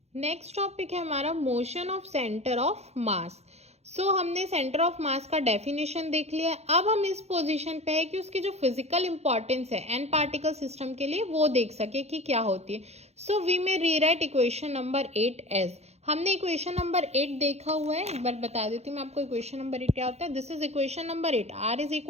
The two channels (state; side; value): late; left; 0.31 ms